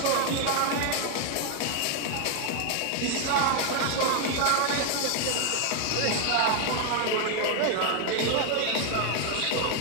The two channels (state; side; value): different; both; correlation 0.01